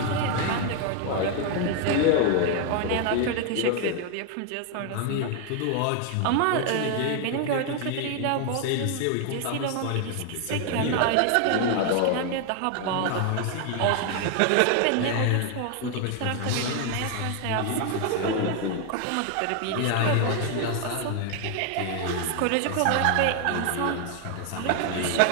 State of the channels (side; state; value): both; different; correlation 0.00